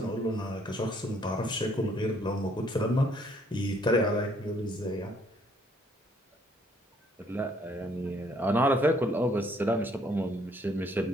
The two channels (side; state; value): both; normal; correlation 0.65